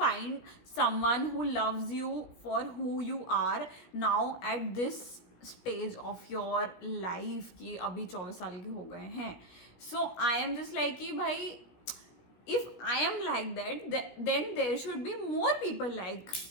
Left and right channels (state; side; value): late; right; 17 ms